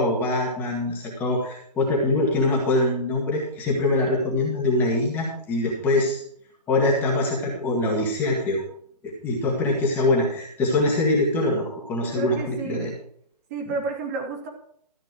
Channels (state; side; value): normal; both; correlation -0.19